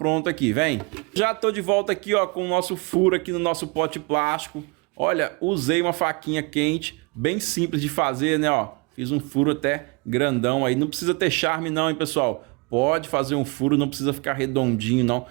aqui, vem. Já tô de volta aqui, ó, com o nosso furo aqui no nosso pote plástico. Olha, usei uma faquinha quente, bem simples de fazer, né, ó. Fiz um furo até grandão aí. Não precisa ter charme não, hein, pessoal. Pode fazer um furo, não precisa ficar redondinho, não.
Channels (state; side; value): quieter; left; 29.6 dB